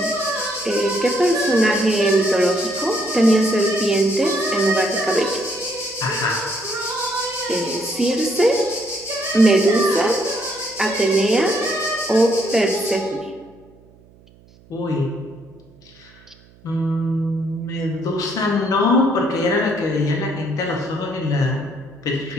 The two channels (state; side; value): noise; right; hum, 27 dB below the sound